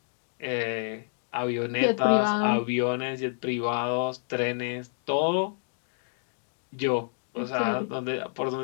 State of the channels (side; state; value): right; silent; digital silence